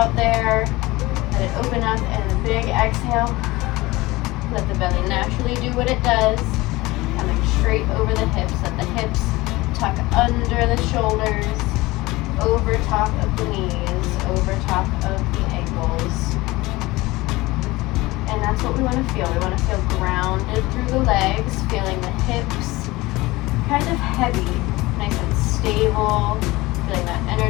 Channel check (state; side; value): quieter; right; 20.5 dB